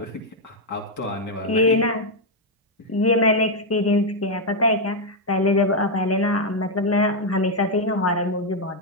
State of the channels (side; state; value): both; normal; correlation 0.00